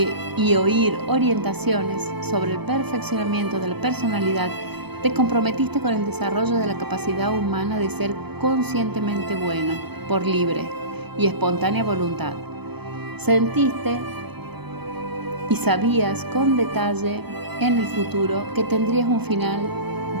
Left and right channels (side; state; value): left; late; 0.98 ms